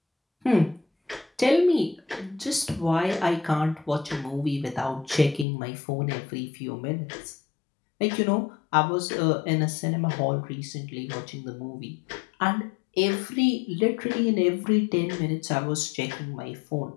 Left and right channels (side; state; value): right; drops out; at 5.5 s